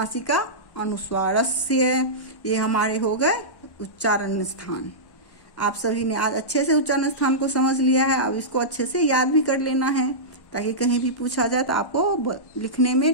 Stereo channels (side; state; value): right; late; 1.1 ms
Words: अनुस्वारस्य। ये हमारे हो गए उच्चारण स्थान। आप सभी ने आज अच्छे से उच्चारण स्थान को समझ लिया है। अब इसको अच्छे से याद भी कर लेना है, ताकि कहीं भी पूछा जाए तो आपको लिखने में,